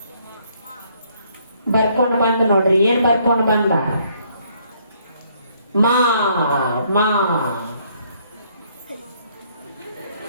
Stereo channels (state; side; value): inverted; both; correlation -0.67